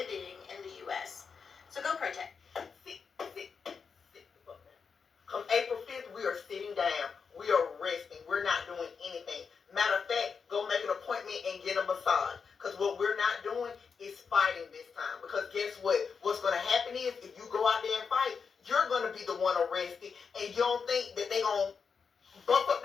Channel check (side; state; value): right; quieter; 5.8 dB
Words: in the US. So go protest. Come April 5th, we are sitting down. We are resting. We're not doing anything. Matter of fact, go make an appointment and get a massage. Because what we're not doing is fighting this time. Because guess what? What's going to happen is if you go out there and fight, you're going to be the one arrested. And you don't think that they're going to bump up